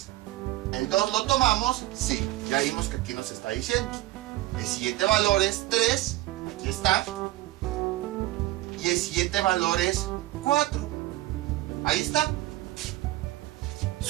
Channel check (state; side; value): quieter; left; 17.3 dB